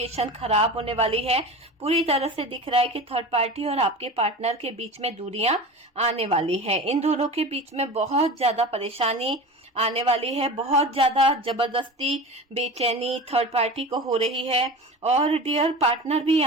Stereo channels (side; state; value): both; normal; correlation 0.32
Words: खराब होने वाली है। पूरी तरह से दिख रहा है कि थर्ड पार्टी और आपके पार्टनर के बीच में दूरियां आने वाली है। इन दोनों के बीच में बहुत ज्यादा परेशानी आने वाली है, बहुत ज्यादा जबरदस्ती बेचैनी थर्ड पार्टी को हो रही है। और डियर, पार्टनर भी